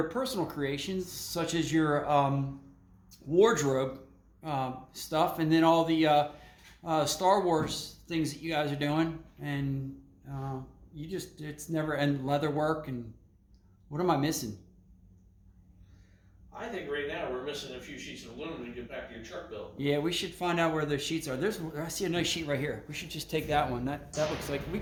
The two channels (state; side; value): identical; both; correlation 1.00